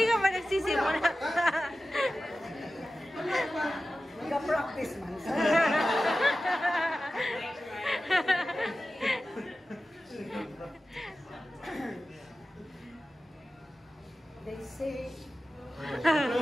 ka pa nagsisimula. Nag-practice man. They say,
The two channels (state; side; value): normal; both; correlation 0.95